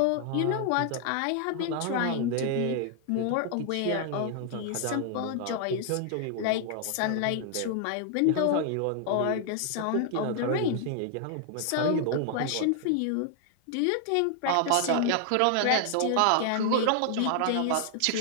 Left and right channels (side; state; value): both; different; correlation 0.00